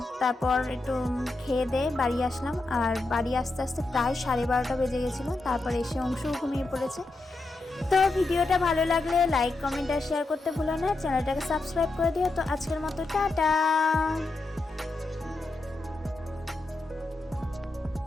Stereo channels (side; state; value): right; quieter; 3.2 dB